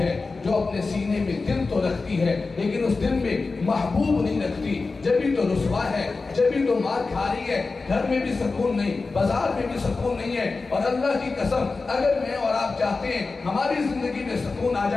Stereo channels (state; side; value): quieter; right; 3.9 dB